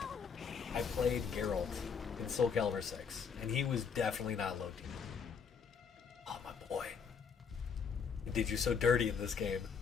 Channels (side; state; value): right; quieter; 6.2 dB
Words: I played Geralt in Soul Calibur 6, and he was definitely not low tier. Oh, my boy. He did you so dirty in this game.